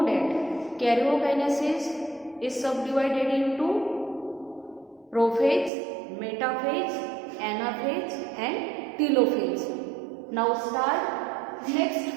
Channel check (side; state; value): left; drops out; at 5.7 s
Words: that karyokinesis is subdivided into prophase, metaphase, anaphase and telophase. Now start next